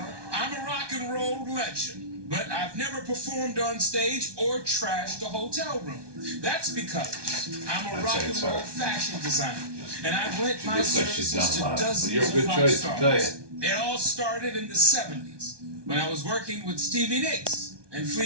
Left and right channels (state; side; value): late; left; 1.2 ms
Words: I'm a rock and roll legend, but I've never performed on stage or trashed a hotel room. That's because I'm a rock and roll fashion designer, and I've lent my services to dozens of rock stars. It all started in the 70s when I was working with Stevie Nicks and